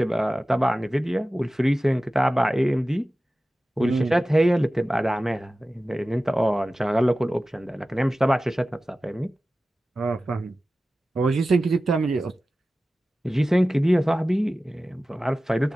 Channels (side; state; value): both; normal; correlation 0.95